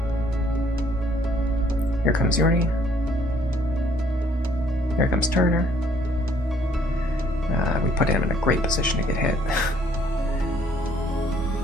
Here comes Yuri. Here comes Turner. We put him in a great position to get hit.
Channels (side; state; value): both; normal; correlation 0.63